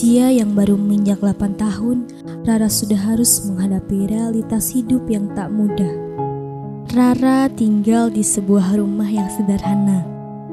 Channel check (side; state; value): both; identical; correlation 1.00